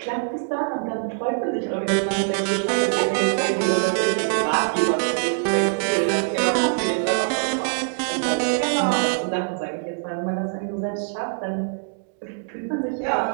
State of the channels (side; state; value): left; silent; digital silence